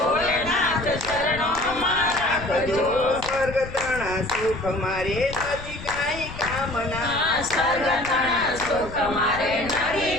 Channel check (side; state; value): left; noise; rumble, 13 dB below the sound